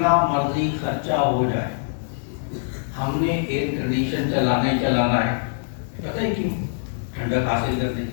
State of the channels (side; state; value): right; silent; digital silence